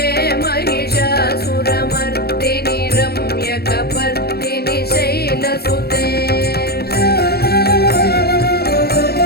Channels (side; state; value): right; late; 0.46 ms